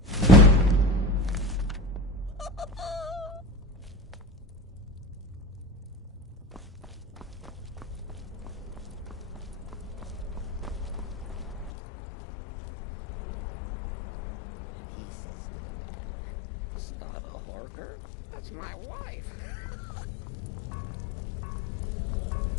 He says it's not a horker, that's my wife.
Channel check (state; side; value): drops out; right; at 11.7 s